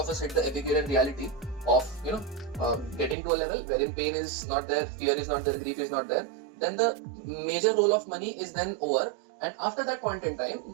us hit the Epicurean reality of getting to a level wherein pain is not there, fear is not there, grief is not there. Then the major role of money is then over, and after that point in time,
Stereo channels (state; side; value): drops out; left; at 3.2 s